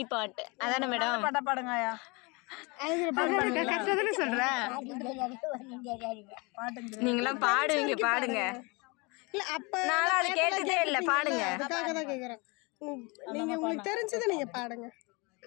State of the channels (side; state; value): right; quieter; 28.1 dB